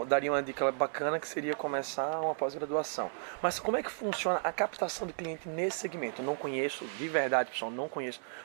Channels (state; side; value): silent; left; 55 dB below the other